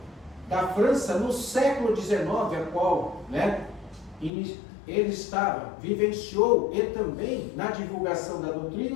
da França no século XIX, a qual, né, ele estava, vivenciou e também na divulgação da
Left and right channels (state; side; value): drops out; right; at 4.3 s